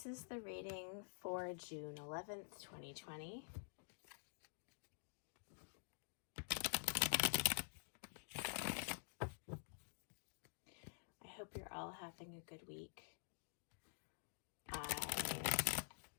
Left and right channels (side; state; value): right; silent; digital silence